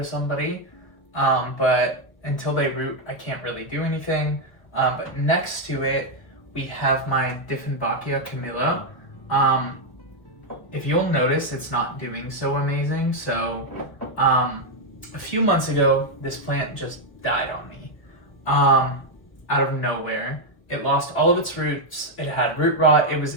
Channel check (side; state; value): right; late; 1.1 ms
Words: somebody. But until they root, I can't really do anything. But next to it, we have my Dieffenbachia Camilla. If you'll notice, it's not doing so amazing. So a few months ago, this plant just died on me out of nowhere. It lost all of its roots. It had root rot. It was